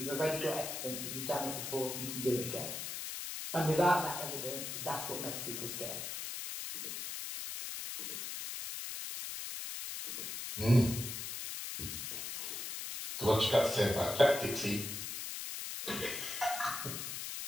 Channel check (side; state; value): left; noise; hiss, 5 dB below the sound